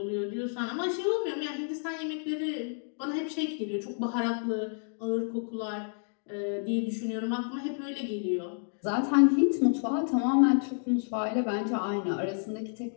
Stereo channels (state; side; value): silent; right; 58 dB below the other